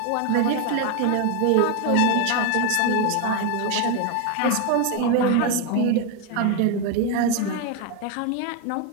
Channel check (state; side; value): different; both; correlation 0.01